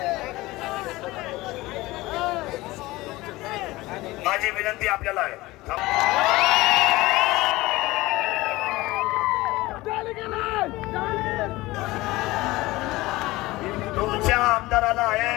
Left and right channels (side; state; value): right; quieter; 19.6 dB